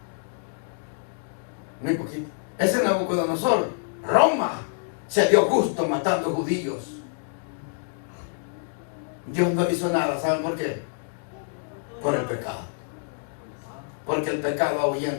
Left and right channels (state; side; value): silent; right; digital silence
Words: Muy poquito. Ese Nabucodonosor, Roma, se dio gusto matando judíos. Dios no hizo nada. ¿Saben por qué? Por el pecado. Porque el pecado